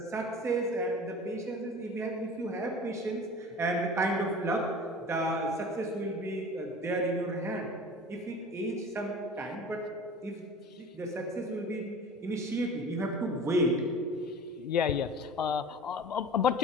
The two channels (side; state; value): both; normal; correlation 0.39